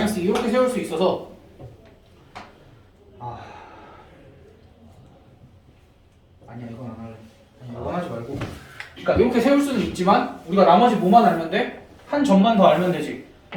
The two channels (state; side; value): identical; both; correlation 1.00